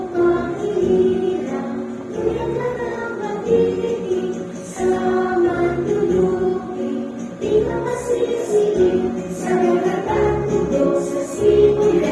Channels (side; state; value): both; identical; correlation 1.00